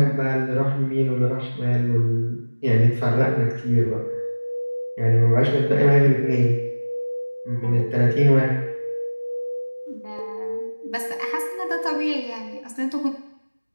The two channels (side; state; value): both; inverted; correlation -1.00